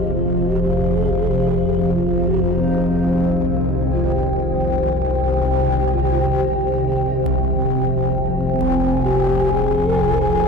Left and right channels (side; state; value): both; normal; correlation 0.45